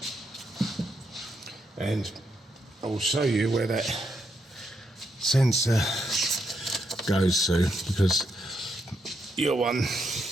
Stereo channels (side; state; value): both; normal; correlation 0.80